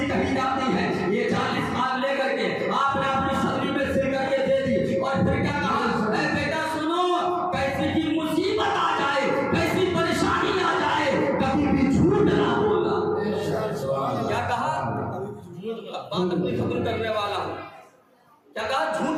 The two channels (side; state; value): both; identical; correlation 1.00